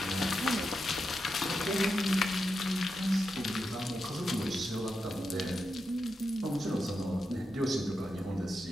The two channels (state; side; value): normal; both; correlation 0.87